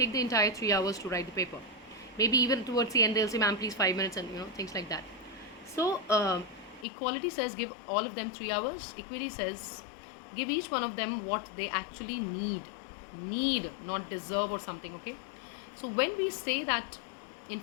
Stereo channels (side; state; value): right; drops out; at 6.9 s